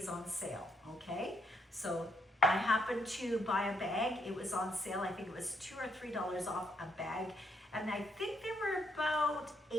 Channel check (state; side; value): normal; both; correlation 0.74